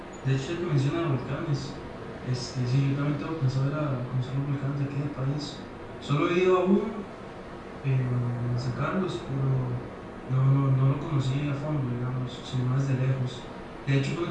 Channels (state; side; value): identical; both; correlation 1.00